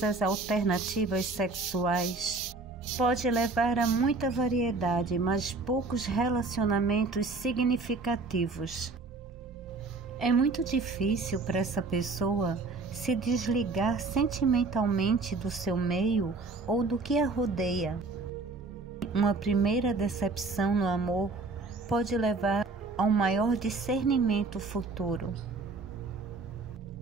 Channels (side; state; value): left; quieter; 3.7 dB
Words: as alternativas sexuais pode levar a muita variedade, mas poucos relacionamentos significativos. É muito difícil para essa pessoa se desligar sentimentalmente do seu meio ou do que a rodeia. Uma primeira decepção no amor pode levar a um maior discernimento futuro.